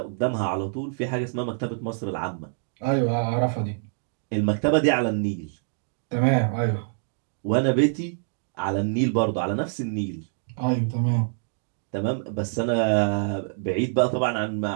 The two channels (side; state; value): left; silent; digital silence